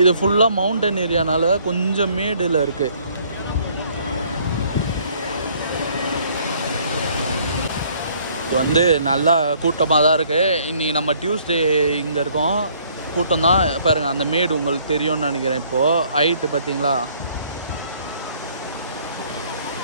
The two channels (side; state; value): both; inverted; correlation -0.61